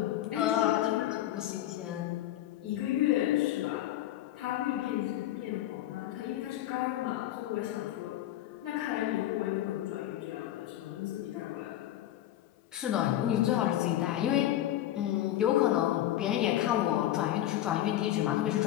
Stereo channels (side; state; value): right; quieter; 13.2 dB